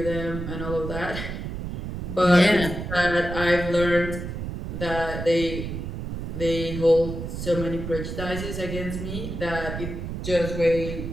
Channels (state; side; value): noise; right; rumble, 6 dB below the sound